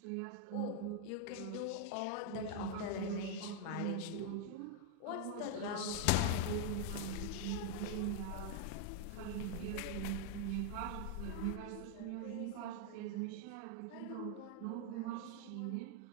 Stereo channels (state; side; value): different; both; correlation 0.00